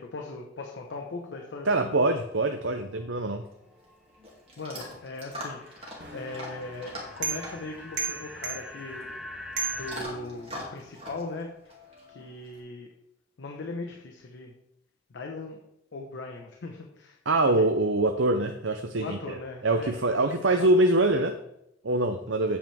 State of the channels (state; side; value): normal; both; correlation -0.07